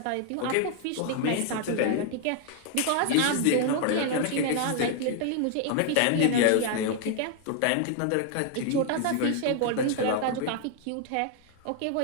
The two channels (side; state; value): both; different; correlation 0.00